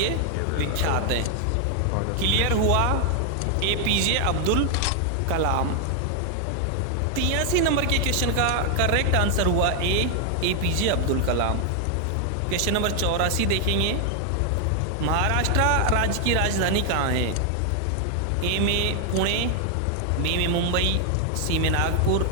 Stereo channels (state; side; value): different; both; correlation 0.00